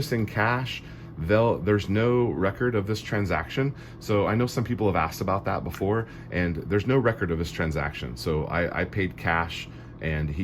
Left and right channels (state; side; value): identical; both; correlation 1.00